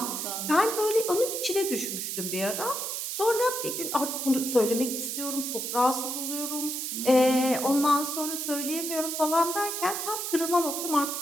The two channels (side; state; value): right; noise; hiss, 3 dB below the sound